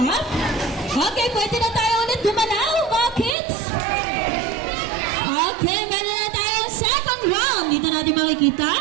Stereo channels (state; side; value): drops out; left; at 3.4 s